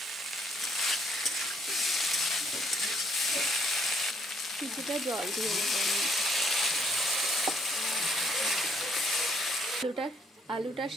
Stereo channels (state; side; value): normal; both; correlation 0.67